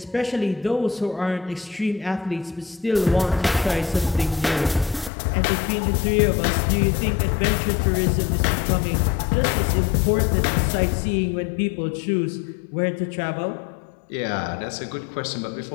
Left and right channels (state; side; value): drops out; right; at 5.1 s